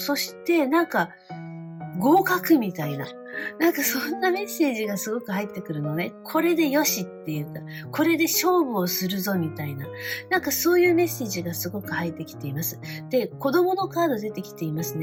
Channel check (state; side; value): identical; both; correlation 1.00